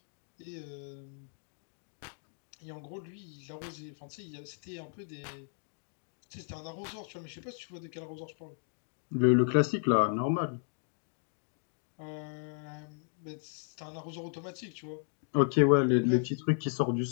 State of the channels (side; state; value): right; silent; 55 dB below the other